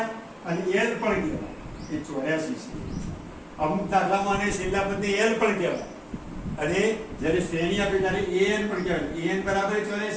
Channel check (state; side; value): identical; both; correlation 1.00